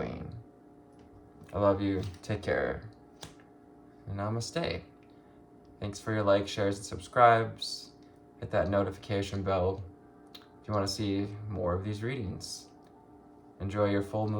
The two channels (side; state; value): both; identical; correlation 1.00